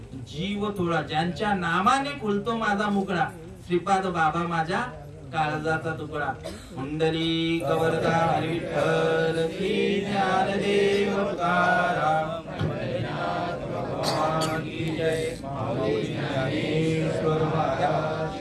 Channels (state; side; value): identical; both; correlation 1.00